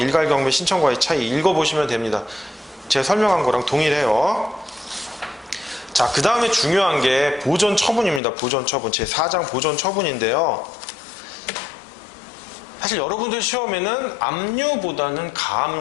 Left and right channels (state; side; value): drops out; right; at 8.2 s